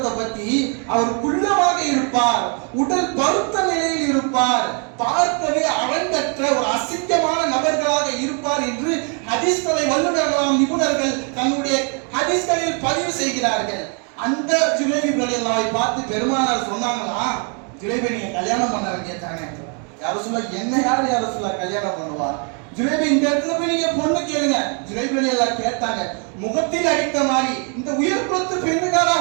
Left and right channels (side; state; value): left; quieter; 39.0 dB